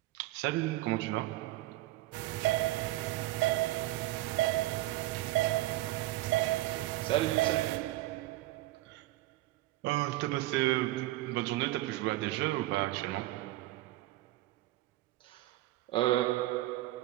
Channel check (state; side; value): quieter; left; 17.5 dB